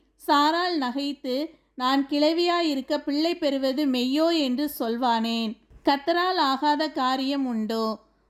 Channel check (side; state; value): both; identical; correlation 1.00